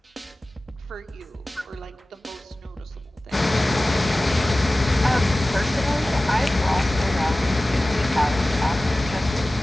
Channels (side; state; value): both; normal; correlation 0.97